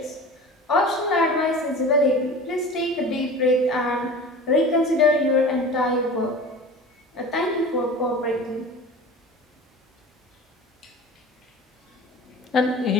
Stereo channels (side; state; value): both; normal; correlation 0.37